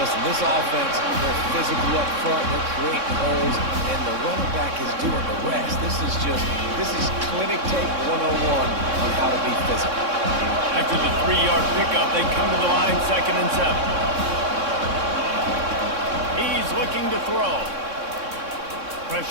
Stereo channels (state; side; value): late; left; 3.6 ms